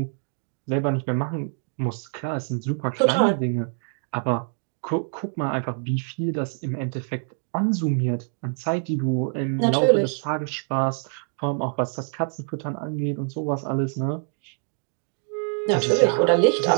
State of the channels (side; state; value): left; silent; 62 dB below the other